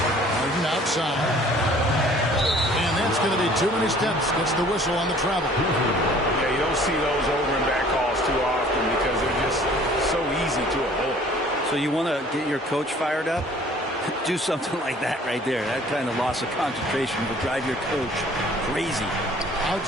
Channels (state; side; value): normal; both; correlation 0.53